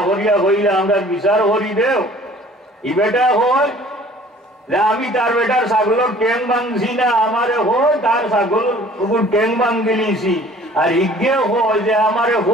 করিয়া হইলে আমরা বিচার করি দেও। ই বেটা হয় যে আমি তার বেটার ছাগলের ট্যাং ভাঙছি না, আমারে হয় তার ছাগল ট্যাং ভাঙ দিলিছি। আর ইগে হয় যে আমারে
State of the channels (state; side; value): normal; both; correlation 0.51